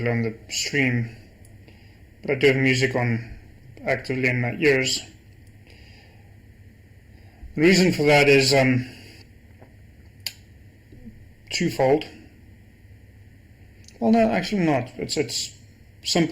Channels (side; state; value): both; identical; correlation 1.00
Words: on the stream, but I do have music on actively in my ears. The reason for that is twofold. Well, no, actually not. It's